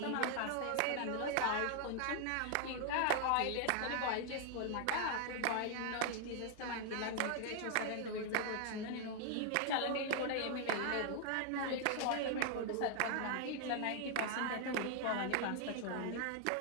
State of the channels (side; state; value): both; different; correlation 0.00